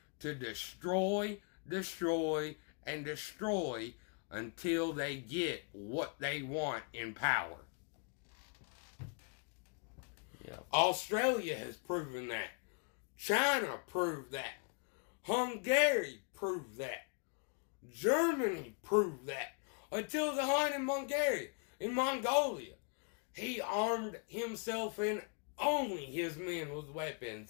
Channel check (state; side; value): quieter; right; 37.7 dB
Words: to destroy, and destroy until they get what they want in power. Yeah. Australia has proven that. China proved that. Hungary proved that. Germany proved that. Until the Hun in Mongolia. He armed himself and only his men with